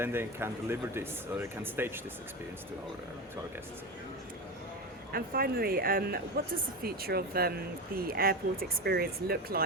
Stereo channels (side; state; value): both; normal; correlation 0.20